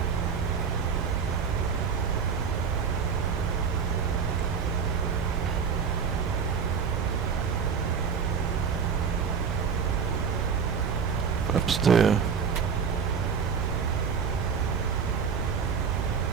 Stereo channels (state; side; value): quieter; left; 6.3 dB